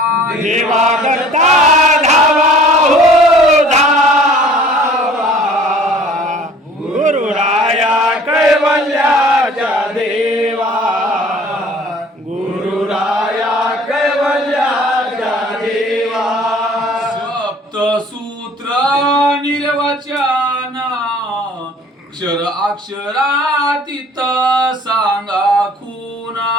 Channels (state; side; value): normal; both; correlation 0.51